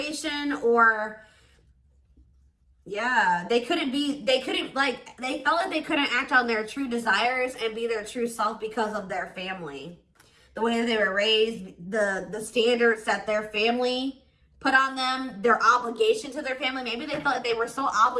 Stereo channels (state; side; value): identical; both; correlation 1.00